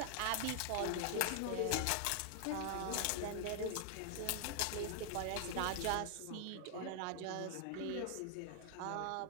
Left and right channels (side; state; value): both; different; correlation 0.00